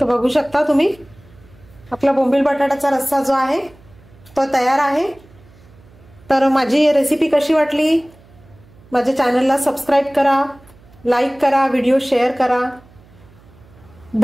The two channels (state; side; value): noise; right; hum, 26 dB below the sound